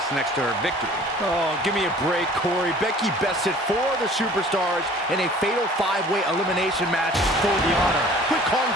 next to her victory. Oh, give me a break, Corey. Becky bested 4 of the superstars in a fatal 5-way elimination match for the honor. Quit calling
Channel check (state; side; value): normal; both; correlation 0.49